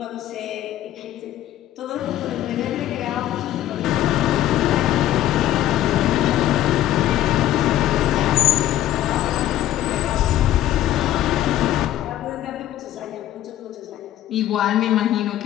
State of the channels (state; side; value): quieter; right; 12.9 dB